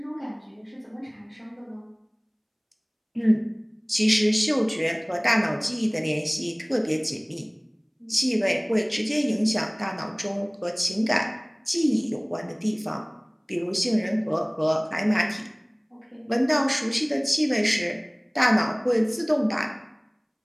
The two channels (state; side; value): identical; both; correlation 1.00